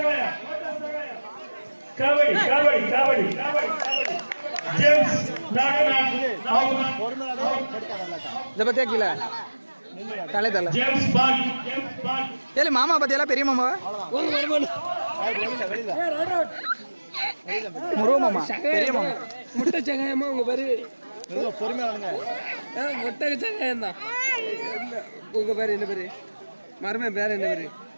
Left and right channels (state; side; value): inverted; both; correlation -1.00